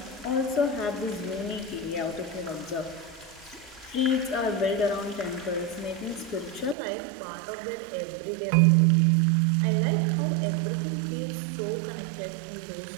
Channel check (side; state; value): left; drops out; at 6.8 s